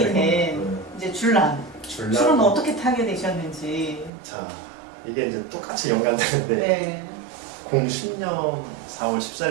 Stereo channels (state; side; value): drops out; left; at 4.1 s